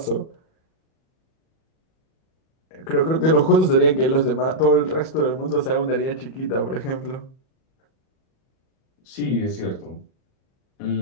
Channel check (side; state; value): right; late; 38 ms